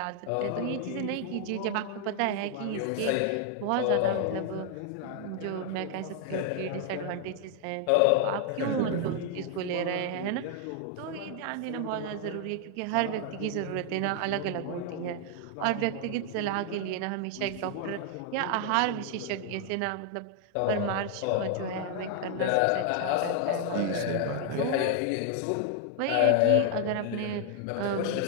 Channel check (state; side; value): different; both; correlation 0.00